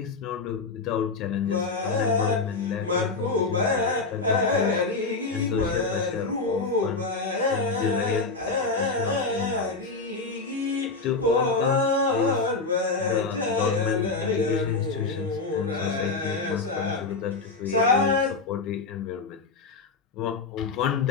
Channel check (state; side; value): quieter; right; 4.0 dB